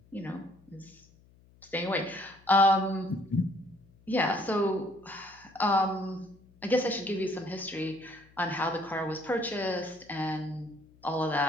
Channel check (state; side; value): noise; left; hum, 28 dB below the sound